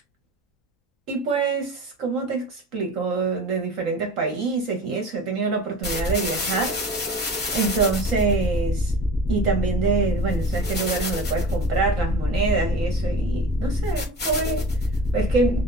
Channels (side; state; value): both; normal; correlation 0.37